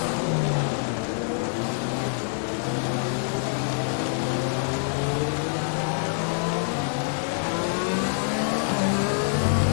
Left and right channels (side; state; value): right; silent; 61 dB below the other